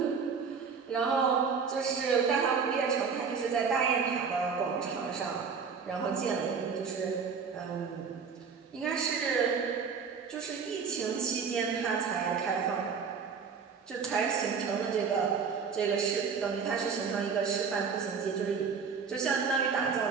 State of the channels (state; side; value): quieter; left; 5.9 dB